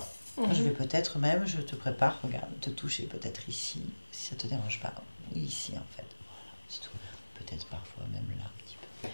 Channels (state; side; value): inverted; both; correlation -1.00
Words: Je vais peut-être même, je te prépare, regarde, te toucher peut-être ici, si ça ne te dérange pas. Oui, ici, en fait. Voilà, c'est tout. Peut-être parfois même là, un petit peu.